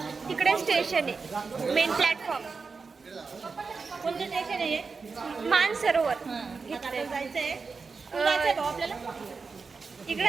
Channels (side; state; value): left; quieter; 4.7 dB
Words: तिकडे स्टेशन आहे मेन प्लॅटफॉर्म. कोणतं स्टेशन आहे? मानसरोवर आपल्याला जायचंय अं, आपल्याला